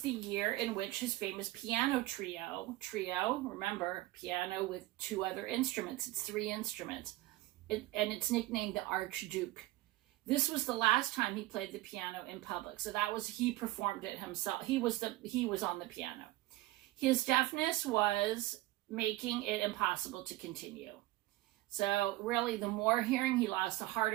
year in which his famous piano trio, remember, piano with two other instruments, it's 3 instruments, and it's nicknamed the Archduke. This was the last time he played the piano in public, so he performed it himself. He was on the piano. His deafness was making it impossible to continue. So really, the more hearing he lost, the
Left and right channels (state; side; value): quieter; left; 18.0 dB